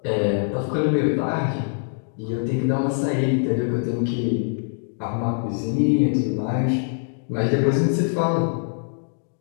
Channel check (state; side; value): silent; right; digital silence